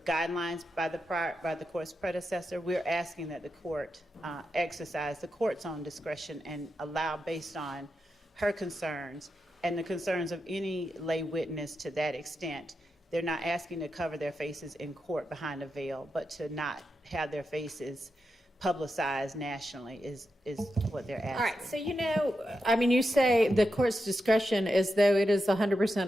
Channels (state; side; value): normal; both; correlation 0.87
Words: guidelines by the court's predecessor, we're asking that the court exercise the court's own discretion and allow, based on her concerns and the concerns of any lay witness to that extent. They're not asking to cover their faces in court behind a veil, but to not have their faces publicized nationally is what they're asking. All right, so you say the court's discretion as though it is